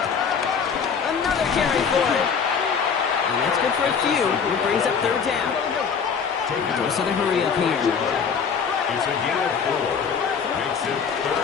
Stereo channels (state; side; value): quieter; right; 6.3 dB